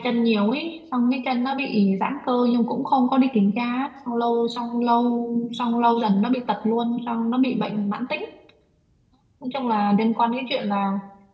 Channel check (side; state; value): both; identical; correlation 1.00